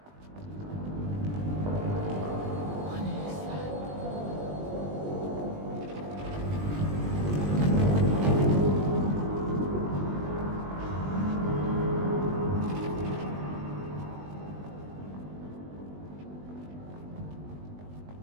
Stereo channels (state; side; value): late; left; 20 ms